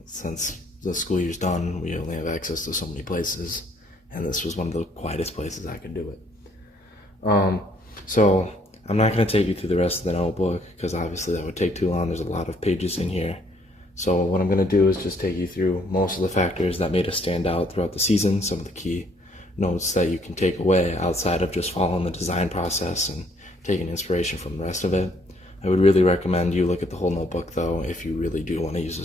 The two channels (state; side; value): normal; both; correlation 0.65